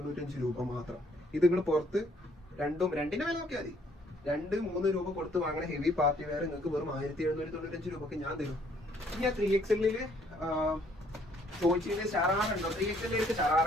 രൂപ മാത്രം. ഇത് നിങ്ങൾ പുറത്ത് രണ്ടിന്റെ വില നോക്കിയാൽ മതി. 2-3 രൂപ കൊടുത്ത് വാങ്ങണ ഹെവി പാർട്ടി വെയർ നിങ്ങൾക്ക് വെറും 1795 രൂപക്ക് ഞാൻ തരും. ഇനി ആ 3XL ചോദിച്ചതിന് ഷറാറുണ്ടോ? 3XL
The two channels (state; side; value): normal; both; correlation 0.64